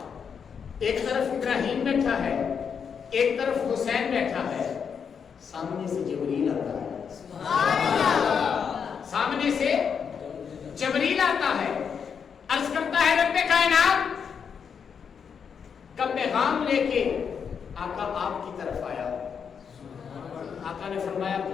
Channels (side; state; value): right; quieter; 6.8 dB